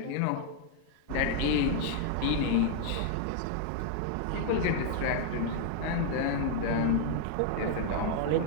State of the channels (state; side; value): different; both; correlation 0.00